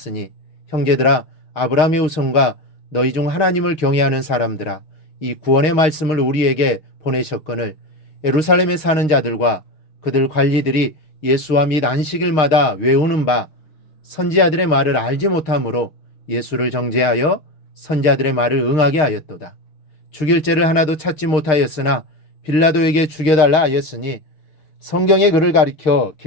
형제들아, 아브라함의 후손과 너희 중 하나님을 경외하는 사람들아, 이 구원의 말씀을 우리에게 보내셨거늘 예루살렘에 사는 자들과 그들 관리들이 예수와 및 안식일마다 외우는 바 선지자들의 말을 알지 못하므로 예수를 정죄하여 선지자들의 말을 응하게 하였도다. 죽일 죄를 하나도 찾지 못하였으나 빌라도에게 죽여달라 하였으니 성경의 글을 가리켜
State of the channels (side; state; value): right; late; 6.4 ms